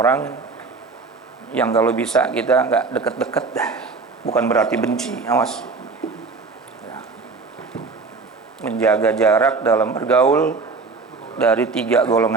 yang kalau bisa kita nggak deket-deket dah. Bukan berarti benci, awas. Ya. Menjaga jarak dalam bergaul dari 3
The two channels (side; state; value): left; quieter; 4.3 dB